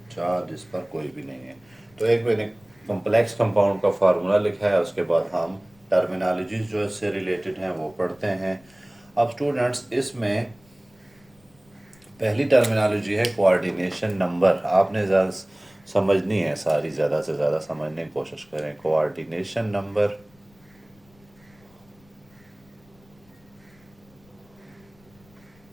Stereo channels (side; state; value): left; noise; rumble, 30 dB below the sound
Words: 4 जिस पर कोई भी नहीं है। तो एक मैंने कॉम्प्लेक्स कंपाउंड का फार्मूला लिखा है, उसके बाद हम टर्मिनोलॉजीज जो इससे रिलेटेड हैं वो पढ़ते हैं। अब स्टूडेंट्स, इसमें पहली टर्मिनोलॉजी है कोऑर्डिनेशन नंबर। आपने ज़्यादा समझनी है सारी, ज़्यादा से ज़्यादा समझने की कोशिश करें। कोऑर्डिनेशन नंबर